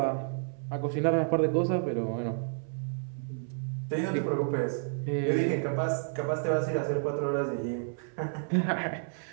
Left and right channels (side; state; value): left; silent; 57 dB below the other